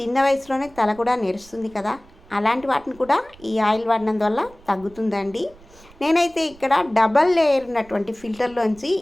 వయసులోనే తల కూడా నెరుస్తుంది కదా, అలాంటి వాటిని కూడా ఈ ఆయిల్ వాడినందు వల్ల తగ్గుతుందండి. నేనైతే ఇక్కడ డబల్ లేయర్ ఉన్నటువంటి ఫిల్టర్లోంచి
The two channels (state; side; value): noise; right; rumble, 24 dB below the sound